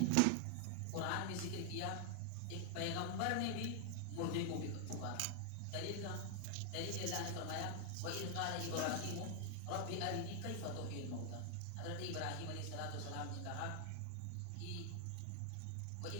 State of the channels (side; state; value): both; different; correlation 0.00